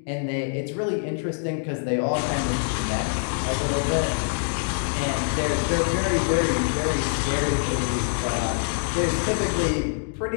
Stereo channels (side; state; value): right; silent; digital silence